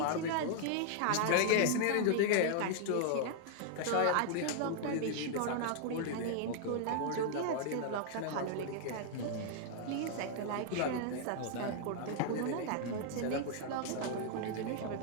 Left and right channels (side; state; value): both; different; correlation 0.00